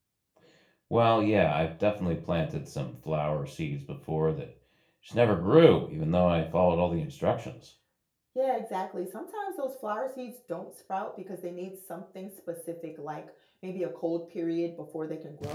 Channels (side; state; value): both; identical; correlation 1.00